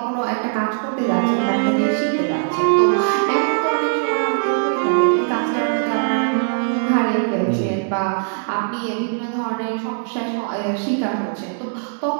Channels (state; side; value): silent; left; digital silence